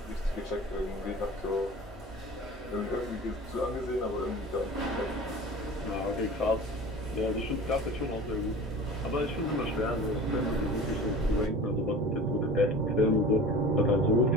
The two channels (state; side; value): normal; both; correlation 0.38